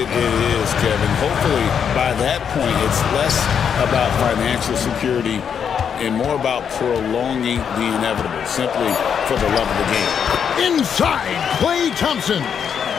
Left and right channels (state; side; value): quieter; right; 7.5 dB